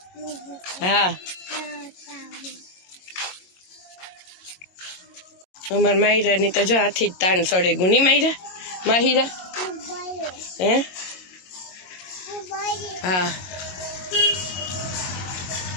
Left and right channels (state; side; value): late; right; 22 ms